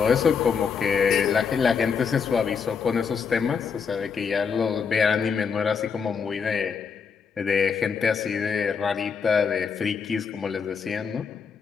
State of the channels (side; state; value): right; quieter; 6.1 dB